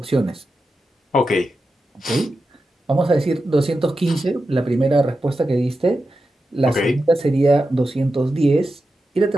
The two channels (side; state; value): both; normal; correlation 0.90